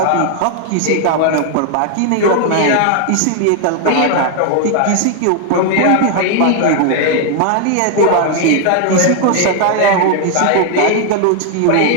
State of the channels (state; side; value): different; both; correlation 0.00